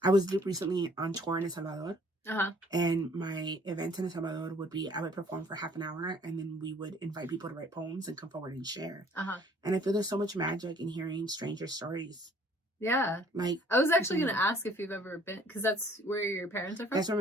I was recently on tour in El Salvador. And my event in El Salvador would be, I would perform for half an hour and then we would invite people to write poems and come forward and share. And I feel there's so much magic in hearing stranger stories. Yeah. Like, I was actually going to ask if you've ever been, because that's where your parents are from? That's where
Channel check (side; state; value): both; normal; correlation 0.57